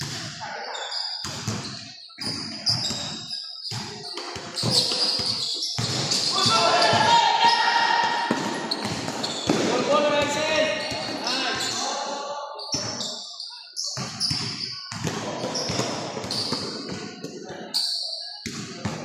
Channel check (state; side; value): identical; both; correlation 1.00